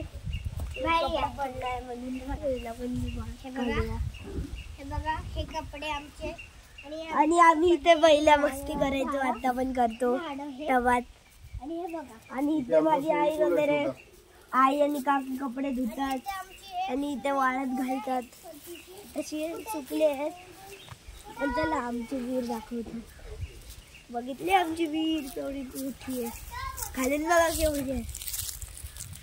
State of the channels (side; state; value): both; identical; correlation 1.00